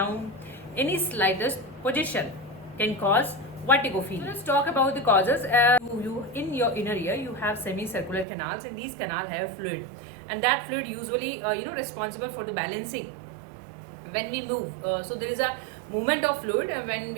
Any slightest position can cause vertigo feeling. So let's talk about the causes. You in your inner ear you have semicircular canals, and these canals have fluid, and that fluid usually responsible for the balancing when we move. So there is a movement of fluid when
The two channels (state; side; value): drops out; left; at 8.2 s